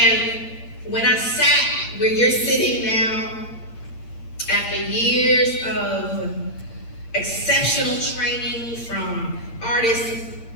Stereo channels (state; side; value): late; right; 8.7 ms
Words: when I sat where you're sitting now, after years of exceptional training from artists